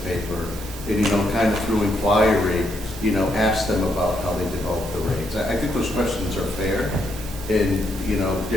paper, and, kind of through inquiry, ask them about how they develop the rates. I think those questions are fair, and,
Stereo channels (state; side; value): normal; both; correlation 0.77